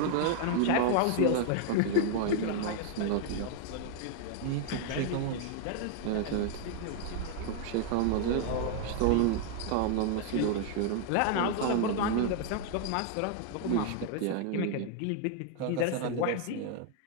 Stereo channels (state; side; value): different; both; correlation 0.00